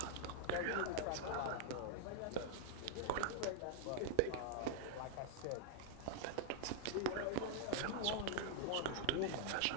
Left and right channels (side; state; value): both; different; correlation 0.00